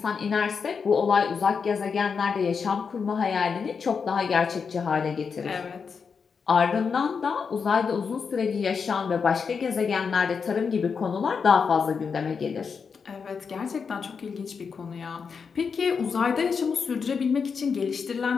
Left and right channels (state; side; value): quieter; right; 5.8 dB